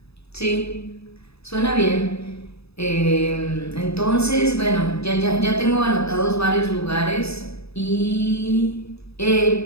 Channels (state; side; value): late; right; 0.78 ms